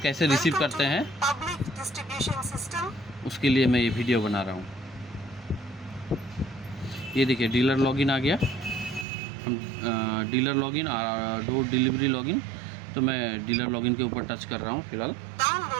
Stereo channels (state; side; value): drops out; left; at 9.1 s